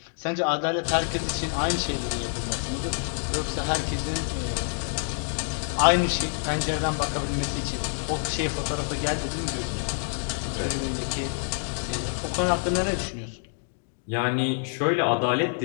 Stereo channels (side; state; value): right; silent; 59 dB below the other